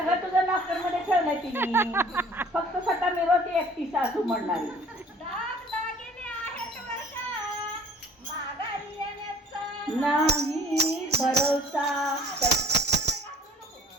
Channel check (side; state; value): both; normal; correlation 0.52